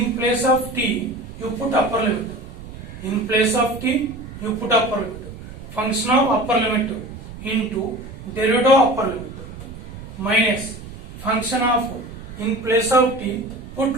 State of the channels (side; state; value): right; noise; rumble, 13 dB below the sound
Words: place of t you put upper limit. In place of t you put upper limit. Function of upper limit into derivative of upper limit minus function of, in place of t put